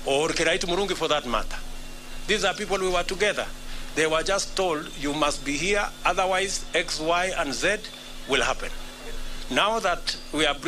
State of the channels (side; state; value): both; identical; correlation 1.00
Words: Or Kiraitu Murungi for that matter. These are people we were together. They were just told, you must be here, otherwise X, Y, and Z will happen. Now that we are